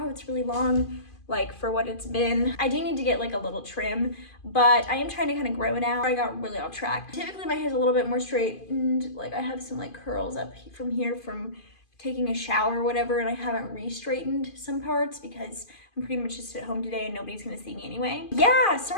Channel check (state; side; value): late; right; 2.5 ms